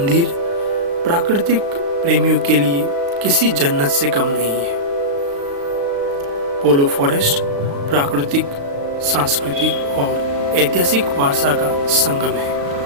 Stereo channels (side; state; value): left; late; 35 ms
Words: प्राकृतिक प्रेमियों के लिए किसी जन्नत से कम नहीं है। पोलो फॉरेस्ट प्राकृतिक, सांस्कृतिक और ऐतिहासिक वारसा का संगम है।